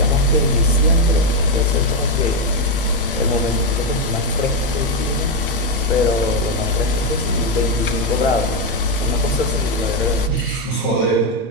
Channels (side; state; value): both; normal; correlation 0.05